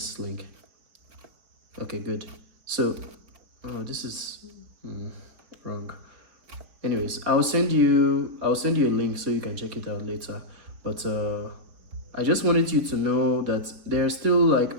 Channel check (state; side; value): late; left; 4.3 ms